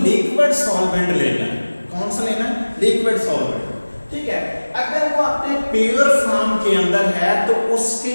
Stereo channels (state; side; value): inverted; both; correlation -1.00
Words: सॉल्वेंट लेना है। कौन सा लेना है? लिक्विड सॉल्वेंट, ठीक है। अगर वो अपने प्योर फॉर्म के अंदर है तो उसके